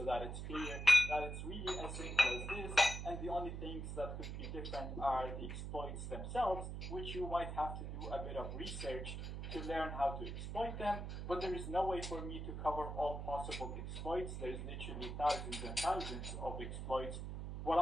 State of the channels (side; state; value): right; noise; hum, 5 dB below the sound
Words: that it's clear that it's really as simple as this, and the only things that could be different are the exploits themselves, which you might have to do a bit of research to learn how to exploit them, but there is no way for me to cover all possible exploits. There's literally thousands and thousands of exploits. What